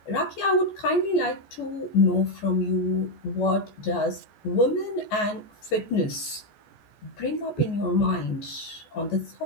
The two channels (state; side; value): late; right; 14 ms